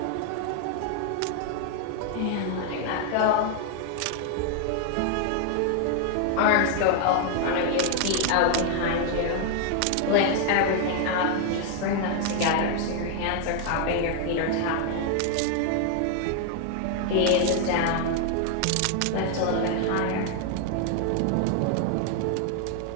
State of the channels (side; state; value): both; different; correlation 0.00